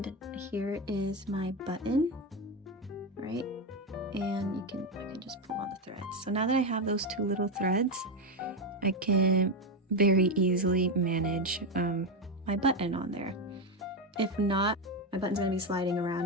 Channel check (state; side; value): normal; both; correlation 0.10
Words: here is my button, right? And I can just pull on the threads. So now that I have those 2 little threads, I can very easily manage my button on there. If not, my button's gonna be sliding